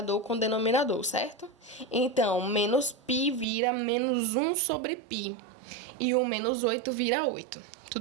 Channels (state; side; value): drops out; left; at 3.5 s